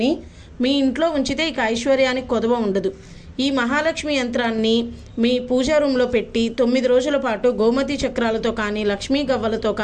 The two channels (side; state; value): both; identical; correlation 1.00